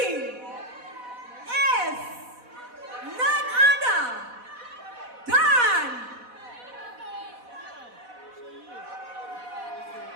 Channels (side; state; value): left; late; 4.1 ms